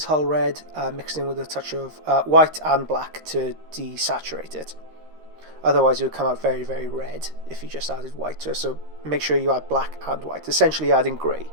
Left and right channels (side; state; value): left; late; 13 ms